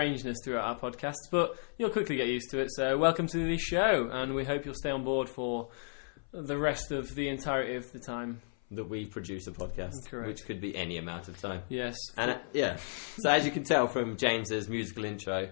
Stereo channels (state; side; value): silent; right; 55 dB below the other